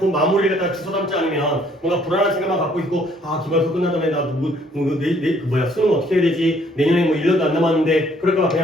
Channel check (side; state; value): both; normal; correlation 0.63